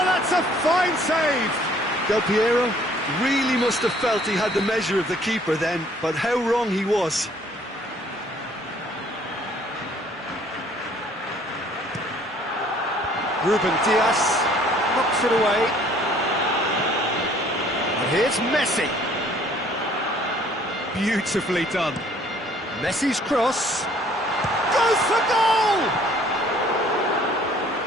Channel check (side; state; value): both; normal; correlation 0.58